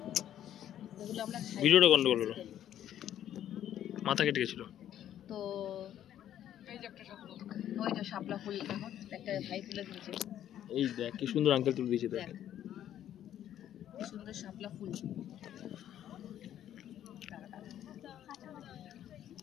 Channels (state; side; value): quieter; right; 11.1 dB